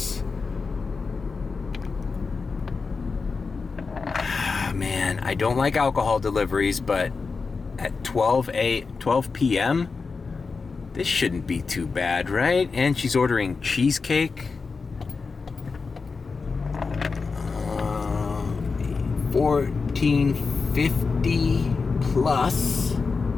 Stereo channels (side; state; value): right; quieter; 4.6 dB